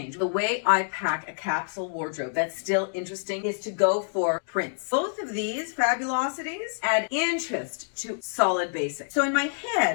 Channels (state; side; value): silent; right; digital silence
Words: The way I pack a capsule wardrobe that's still interesting is to go for prints. Both of these fabulosities add interest to solid basics. So in my head,